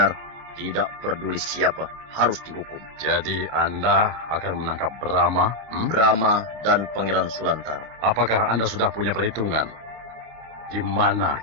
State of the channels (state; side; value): late; left; 27 ms